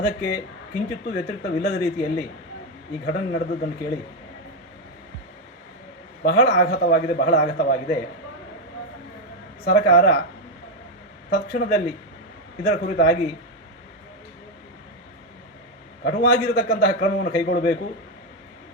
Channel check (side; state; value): both; normal; correlation 0.06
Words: ಅದಕ್ಕೆ ಕಿಂಚಿತ್ತೂ ವ್ಯತಿರಿಕ್ತವಿಲ್ಲದ ರೀತಿಯಲ್ಲಿ ಈ ಘಟನೆ ನಡೆದದ್ದನ್ನು ಕೇಳಿ ಬಹಳ ಆಘಾತವಾಗಿದೆ. ಸರ್ಕಾರ ತಕ್ಷಣದಲ್ಲಿ ಇದರ ಕುರಿತಾಗಿ ಕಟುವಾಗಿರತಕ್ಕಂತಹ ಕ್ರಮವನ್ನು ಕೈಗೊಳ್ಳಬೇಕು.